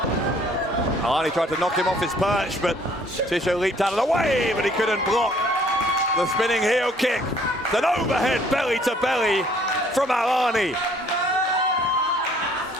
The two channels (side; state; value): both; normal; correlation 0.60